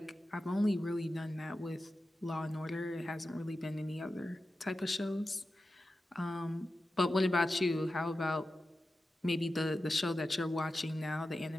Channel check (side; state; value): both; normal; correlation 0.93